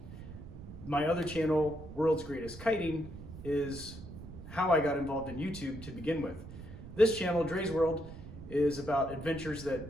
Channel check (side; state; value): right; noise; rumble, 13 dB below the sound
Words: My other channel, World's Greatest Kiting, is how I got involved in YouTube to begin with. This channel, Dre's World, is about adventures